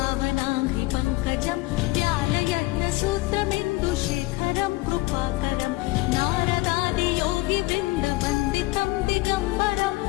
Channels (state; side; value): quieter; right; 21.2 dB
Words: पङ्कजं ज्ञानयज्ञसूत्रमिन्दुशेखरं कृपाकरं नारदादियोगिवृन्दवन्दितं दिगम्बरं